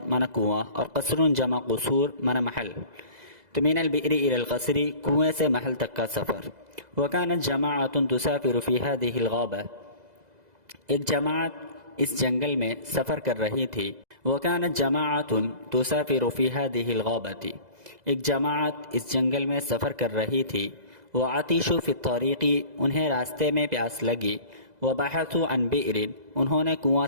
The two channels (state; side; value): late; left; 2.0 ms